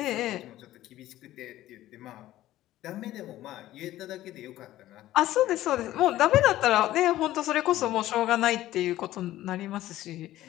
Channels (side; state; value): right; quieter; 14.7 dB